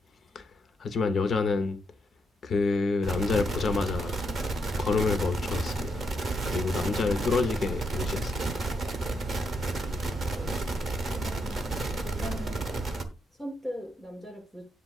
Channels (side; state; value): both; normal; correlation 0.79